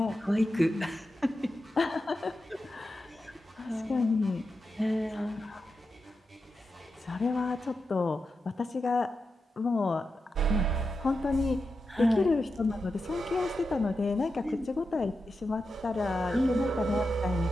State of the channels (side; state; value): both; normal; correlation 0.89